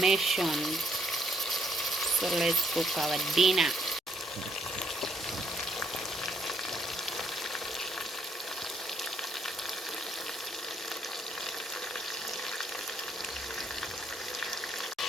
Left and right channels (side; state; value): both; normal; correlation 0.71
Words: So let's cook our dinner.